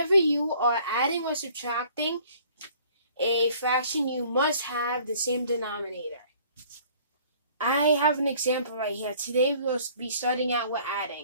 you are adding or subtracting a fraction, you must have the same denominator. I have an example right here. Today we'll be starting out with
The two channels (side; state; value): both; inverted; correlation -0.55